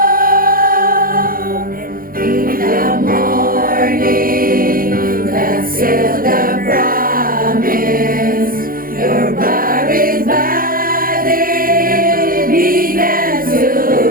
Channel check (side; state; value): left; late; 0.42 ms